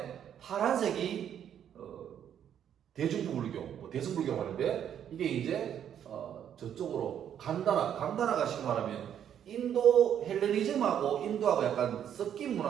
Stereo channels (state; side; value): quieter; left; 9.4 dB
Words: 파란색이 대중부 불교, 뭐 대승불교라고 하는데, 이게 이제 저쪽으로 간다나가 쉽게 말하면 인도 헬레니즘하고 인도하고 약간 섞인